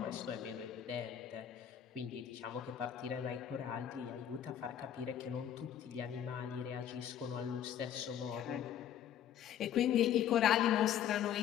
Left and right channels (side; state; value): right; quieter; 9.9 dB